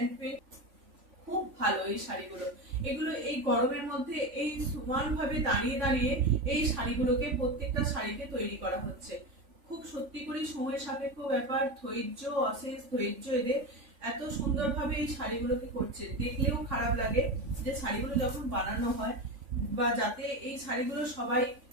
পেইন্ট খুব ভালো এই শাড়িগুলো। এগুলো এই গরমের মধ্যে এই সমান ভাবে দাঁড়িয়ে দাঁড়িয়ে এই শাড়িগুলোকে প্রত্যেকটা শাড়িতে তৈরি করা হচ্ছে। খুব সত্যি করে সময় সাপেক্ষ ব্যাপার, ধৈর্য, অশেষ ধৈর্য এদের। এত সুন্দরভাবে এই শাড়িগুলোকে করছে, দেখলেও খারাপ লাগে যে শাড়িগুলো যখন বানানো হয় বা যাতে এই শাড়িগুলো সবাই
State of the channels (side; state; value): left; late; 3.5 ms